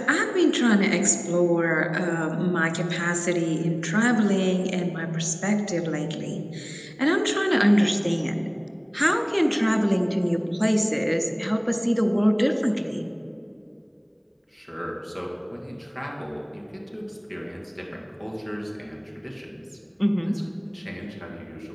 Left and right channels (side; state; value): both; identical; correlation 1.00